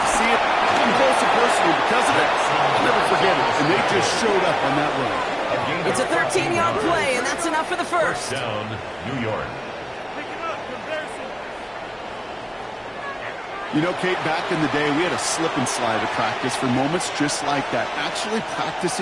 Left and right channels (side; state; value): both; identical; correlation 1.00